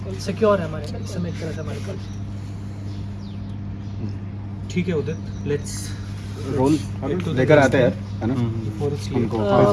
सिक्योर है हमारे इस समय एक तरह से हमारे पास। ठीक है उदित, लेट्स रोल लेकर आते हैं, है ना? हमको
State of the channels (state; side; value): identical; both; correlation 1.00